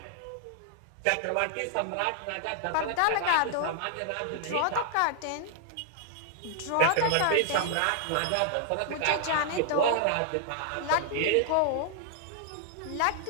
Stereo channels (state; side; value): different; both; correlation 0.00